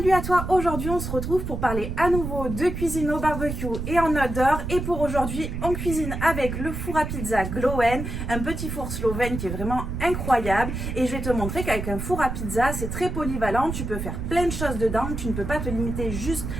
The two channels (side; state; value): right; noise; rumble, 5 dB below the sound